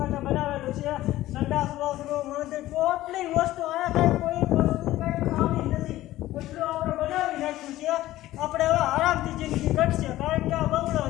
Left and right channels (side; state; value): right; quieter; 15.4 dB